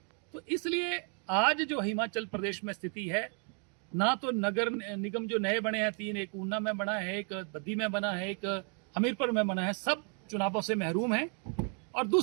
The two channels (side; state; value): left; quieter; 39.9 dB